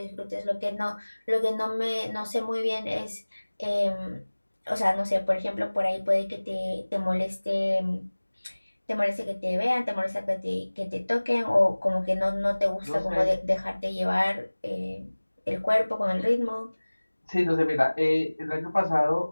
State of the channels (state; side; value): inverted; both; correlation -1.00